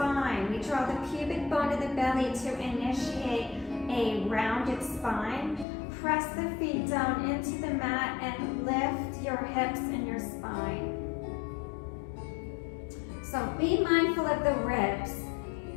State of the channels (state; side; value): drops out; right; at 5.7 s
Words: We draw the pubic bone of the belly to initiate a rounded spine. Press the feet down into the mat and lift your hips and your spine. So be mindful of the ribs.